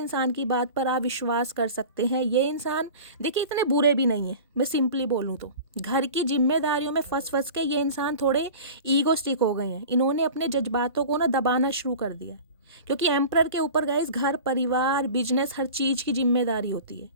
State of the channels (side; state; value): both; inverted; correlation -0.37